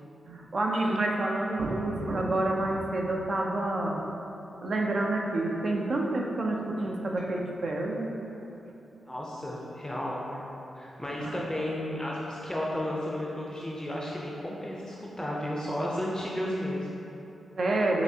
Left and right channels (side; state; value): both; normal; correlation 0.88